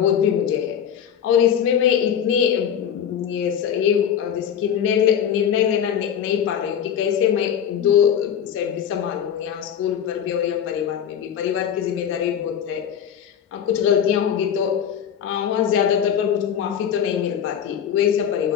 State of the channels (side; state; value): right; quieter; 8.8 dB